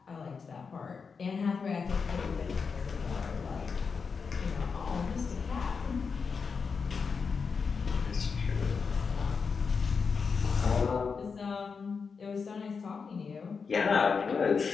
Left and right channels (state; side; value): quieter; right; 5.4 dB